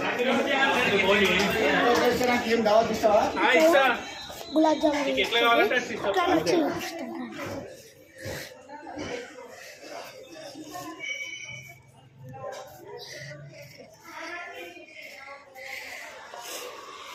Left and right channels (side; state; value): both; identical; correlation 1.00